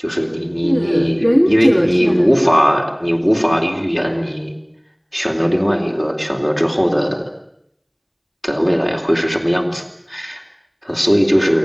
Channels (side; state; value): both; identical; correlation 1.00